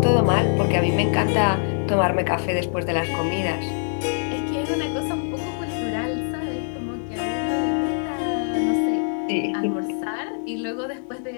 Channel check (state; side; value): silent; right; 63 dB below the other